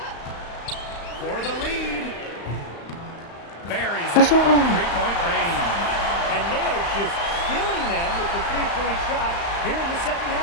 For the lead. Buries it. Three-point range. And they are just killing them with the three-point shot here in the second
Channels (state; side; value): late; right; 35 ms